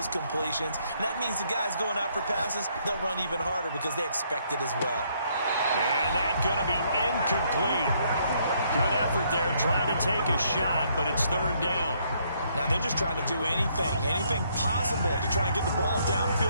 completions. And that means the guys going out for passes, they'll run even harder because they expect it as well. And that's going to be incomplete. Good effort there, trying to take a shot, but it's 3rd down. Now they're just trying to do anything possible to try and get the ball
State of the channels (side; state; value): both; inverted; correlation -0.70